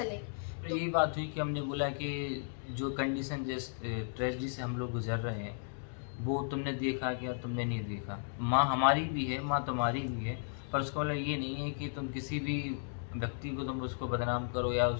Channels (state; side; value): silent; right; digital silence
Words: तो यही बात हुई कि हमने बोला कि जो कंडीशन जिस ट्रेजेडी से हम लोग गुजर रहे हैं वो तुमने देखा क्या, तुमने नहीं देखा। माँ हमारी भी है, माँ तुम्हारी भी है, पर उसका मतलब ये नहीं है कि तुम किसी भी व्यक्ति को तुम उसको बदनाम करो या